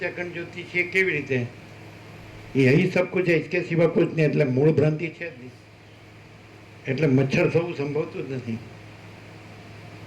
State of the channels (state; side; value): identical; both; correlation 1.00